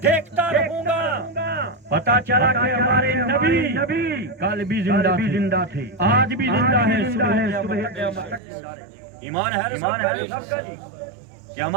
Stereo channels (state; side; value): drops out; left; at 8.4 s